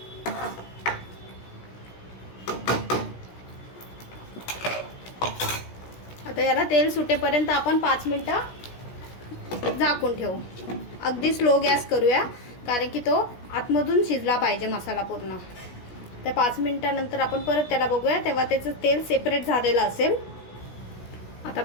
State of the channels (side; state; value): right; late; 16 ms